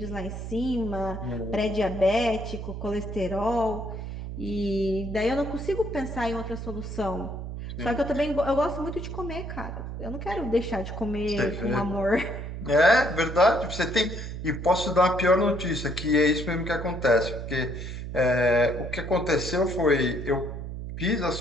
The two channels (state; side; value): noise; right; hum, 7 dB below the sound